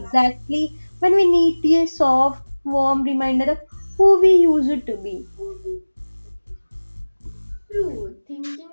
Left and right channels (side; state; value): both; inverted; correlation -1.00